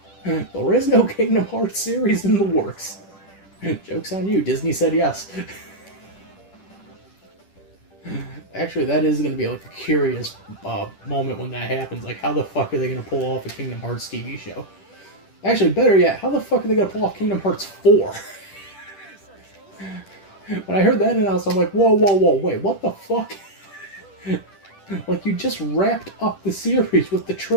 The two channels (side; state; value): right; late; 10 ms